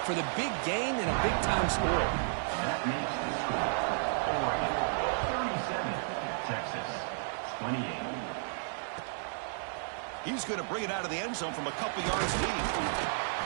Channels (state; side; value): silent; left; digital silence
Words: for the big gain and a big-time score. That makes the score 37, Texas 28. He's going to bring it out of the end zone from a couple yards deep.